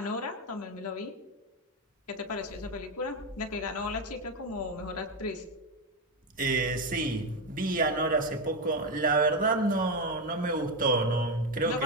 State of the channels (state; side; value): normal; both; correlation 0.11